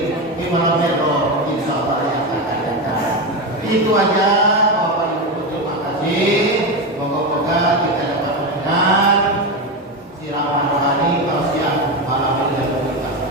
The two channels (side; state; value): both; normal; correlation 0.15